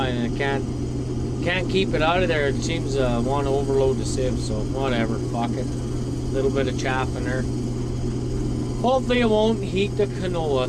and I can't keep it out of there. It seems to want to overload the sieve, so whatever, fuck it. A little bit of chaff in there. Hopefully it won't heat the canola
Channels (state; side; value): identical; both; correlation 1.00